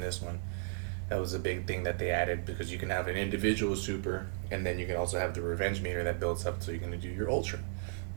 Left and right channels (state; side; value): silent; left; digital silence